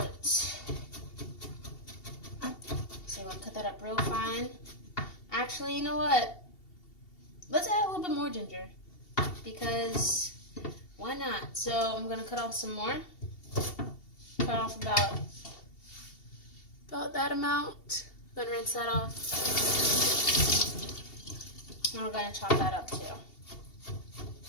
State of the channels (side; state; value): right; late; 2.7 ms